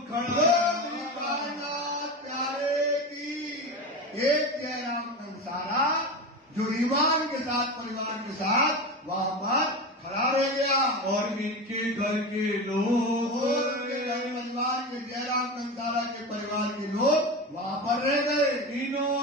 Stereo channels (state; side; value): normal; both; correlation 0.23